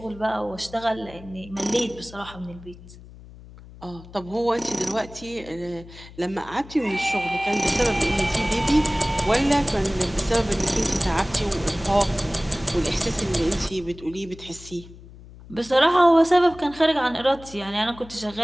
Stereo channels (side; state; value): left; noise; hum, 19 dB below the sound